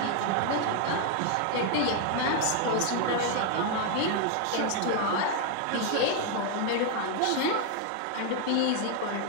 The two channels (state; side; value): different; both; correlation 0.00